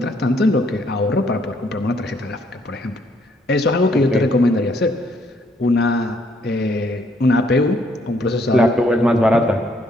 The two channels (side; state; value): both; normal; correlation 0.68